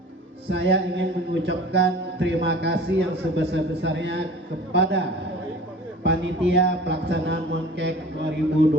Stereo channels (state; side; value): normal; both; correlation 0.42